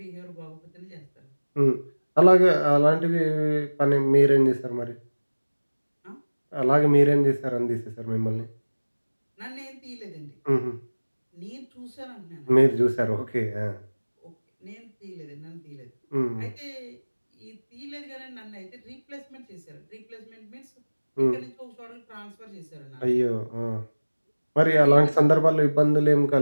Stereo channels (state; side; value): inverted; both; correlation -1.00